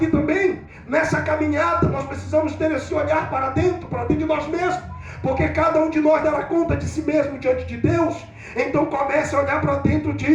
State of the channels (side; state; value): both; identical; correlation 1.00